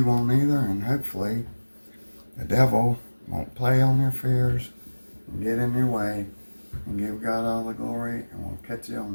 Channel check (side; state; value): both; inverted; correlation -1.00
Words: won't either, and hopefully the devil won't play on your fears and get in your way, and give God all the glory, and we'll catch you on